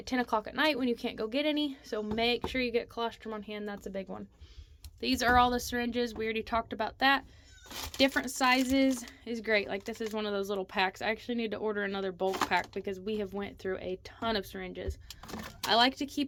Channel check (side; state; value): both; identical; correlation 1.00